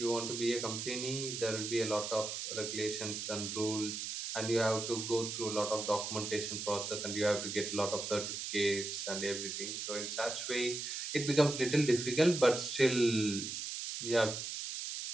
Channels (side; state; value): right; noise; hiss, 5 dB below the sound